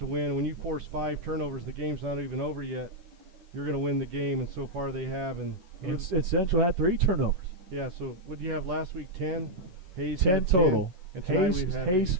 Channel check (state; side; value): late; left; 11 ms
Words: win. When you force 5 turnovers, the game's not even over yet. You're going to win the game, and so far they have. And Central had 3 turnovers. Yeah, so what did you have last week? 10? Hayes 10 had total. 10, and Hayes